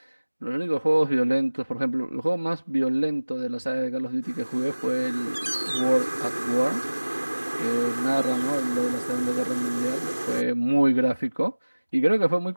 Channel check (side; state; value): both; inverted; correlation -1.00